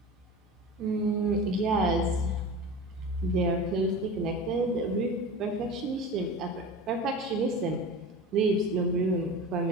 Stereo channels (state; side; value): normal; both; correlation 0.33